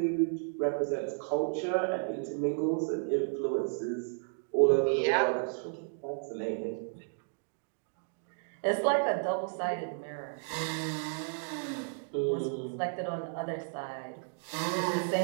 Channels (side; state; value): left; silent; digital silence